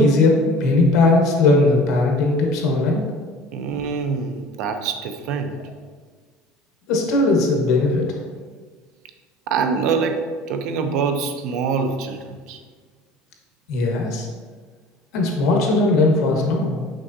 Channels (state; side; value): normal; both; correlation 0.43